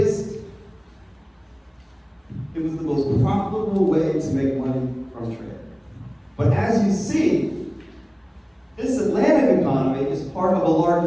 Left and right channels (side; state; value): both; identical; correlation 1.00